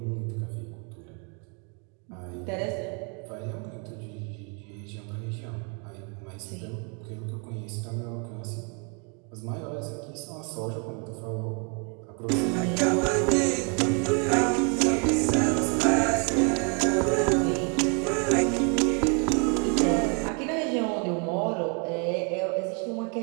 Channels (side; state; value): left; quieter; 36.6 dB